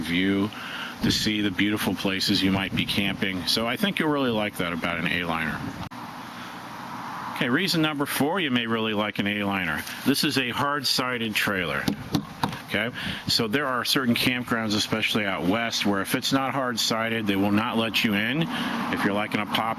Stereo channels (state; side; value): identical; both; correlation 1.00